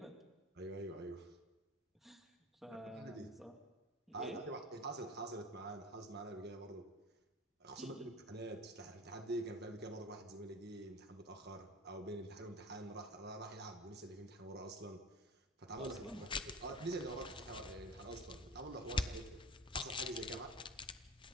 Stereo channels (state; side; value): normal; both; correlation 0.36